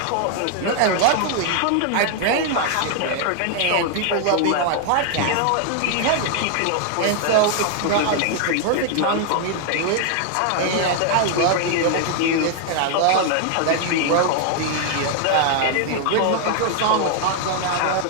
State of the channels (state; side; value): different; both; correlation 0.00